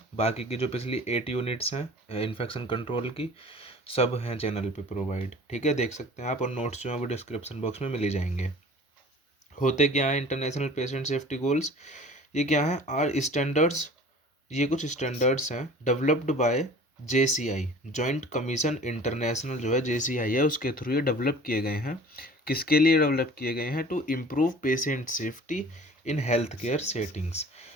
बाकी की जो पिछली 8 यूनिट्स हैं इन्फेक्शन कंट्रोल की, सब हैं चैनल पे प्रोवाइड। ठीक है, देख सकते हैं आप, और नोट्स जो हैं वो डिस्क्रिप्शन बॉक्स में मिल ही जाएंगे। होते क्या है इंटरनेशनल पेशेंट सेफ्टी गोल्स, ये क्या है, आर स्टैंडर्ड्स, ये कुछ स्टैंडर्ड्स हैं developed by JCI, joint commission international, जो है JCI है, उसके थ्रू ये डेवलप किए गए हैं। किसके लिए डेवलप किए गए हैं? To improve patient safety in health care settings,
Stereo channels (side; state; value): both; normal; correlation 0.45